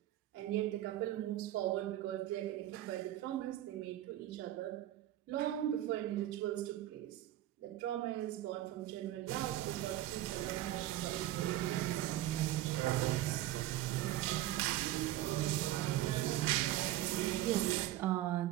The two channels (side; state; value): left; quieter; 14.2 dB